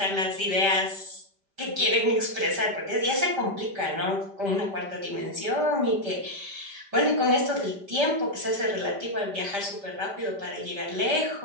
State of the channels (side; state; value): left; late; 5.1 ms